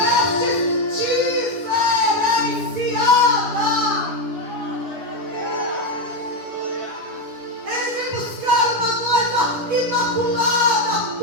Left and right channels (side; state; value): left; late; 10 ms